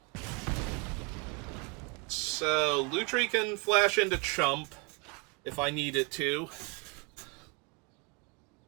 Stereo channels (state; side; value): quieter; left; 32.1 dB